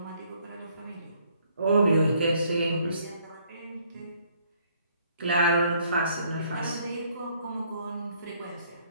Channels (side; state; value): both; inverted; correlation -0.65